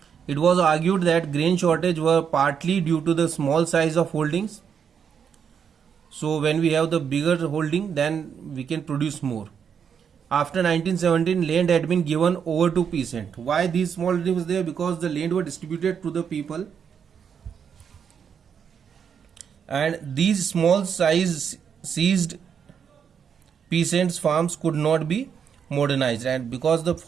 It was argued that grain shortage were partly due to the small size of holdings. So when we have the bigger holding, then we can produce more. After 1917, land had been given over to peasant. Why these small holdings was there? Because the land were distributed to the people, and these small size seized peasants' farms could not be modernized, and because the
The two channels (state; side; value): quieter; left; 7.3 dB